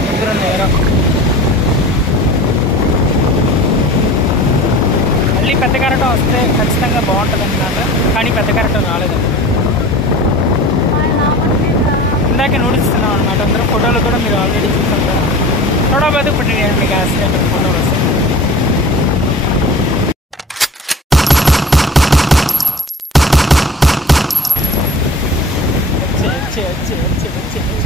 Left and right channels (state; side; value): normal; both; correlation 0.38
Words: ఇద్దరు నేరం. మళ్ళీ పెద్ద కరెంట్ వస్తే ఖచ్చితంగా బాగుంటుంది అన్నమాట. కానీ పెద్ద కరెంట్ రాలేదు. ఇందాక నూడిస్తున్నాం అనమాట. అందరూ ఫోటోలు కూడా మీరు ఆల్రెడీ చూసారు కదా. थोड़ा बहुत पटेगा निकास फोटो बस अच्छे अच्छे अच्छे अच्छे